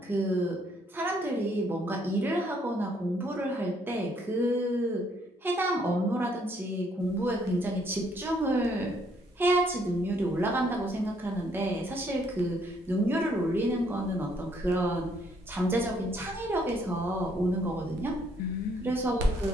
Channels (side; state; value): both; normal; correlation 0.68